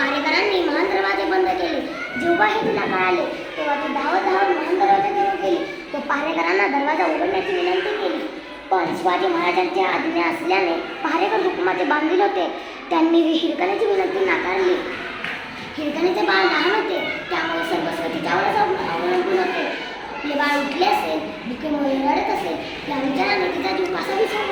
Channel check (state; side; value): identical; both; correlation 1.00